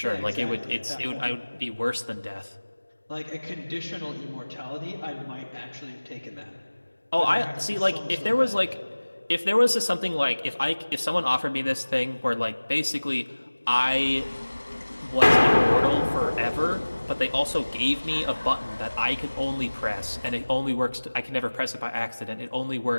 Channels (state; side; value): inverted; both; correlation -1.00